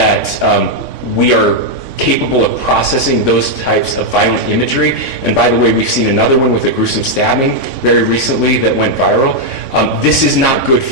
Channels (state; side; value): late; left; 3.5 ms